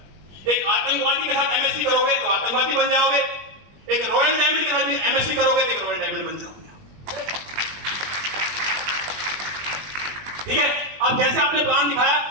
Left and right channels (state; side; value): late; left; 20 ms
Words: एक आतंकवादी के साथ एमएससी करोगे तो आतंकवादी बन जाओगे, एक रॉयल डायमंड के साथ भी एमएससी करोगे तो एक रॉयल डायमंड बन जाओगे। ठीक है, अब जैसे आपने प्लान दिखाया,